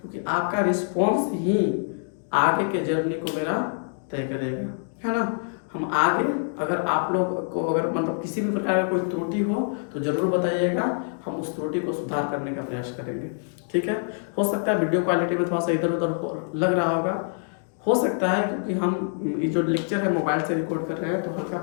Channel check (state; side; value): silent; right; digital silence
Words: आपका रिस्पॉन्स ही आगे के जर्नी को मेरा तय करेगा, है ना। हम आगे, अगर आप लोग को अगर मतलब किसी भी प्रकार का कोई त्रुटि हो तो ज़रूर बताइएगा, हम उस त्रुटि को सुधार करने का प्रयास करेंगे, ठीक है। हो सकता है वीडियो क्वालिटी में थोड़ा सा इधर उधर लग रहा होगा, हो सकता है, क्योंकि हम ये जो लेक्चर है मोबाइल से रिकॉर्ड कर रहे हैं, तो हल्का